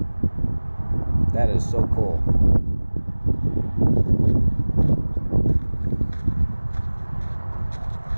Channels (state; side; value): inverted; both; correlation -1.00